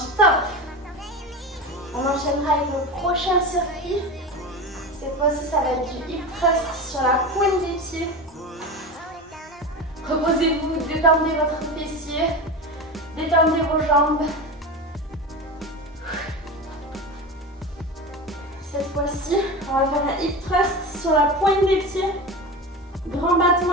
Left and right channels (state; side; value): normal; both; correlation 0.26